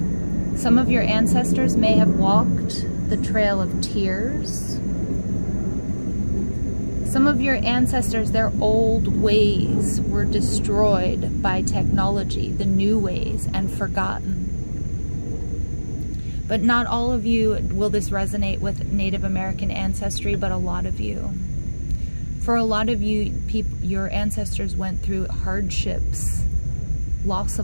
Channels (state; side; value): inverted; both; correlation -1.00